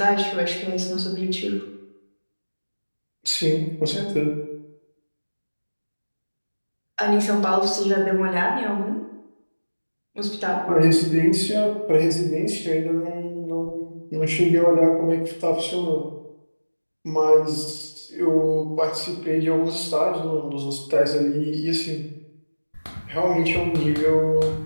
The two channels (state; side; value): inverted; both; correlation -1.00